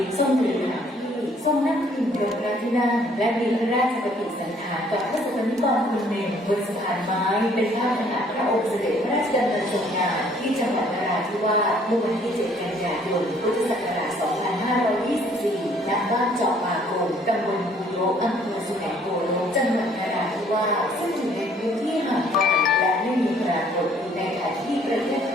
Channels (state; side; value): normal; both; correlation 0.61